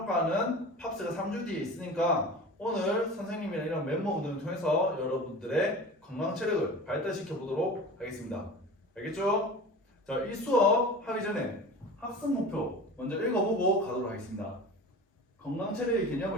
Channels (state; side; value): normal; both; correlation 0.36